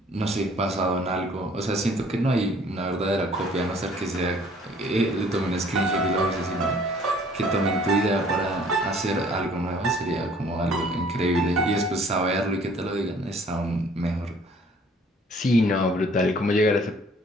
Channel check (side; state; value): both; normal; correlation 0.56